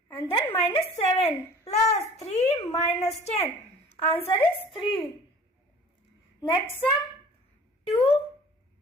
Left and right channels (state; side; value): normal; both; correlation 0.46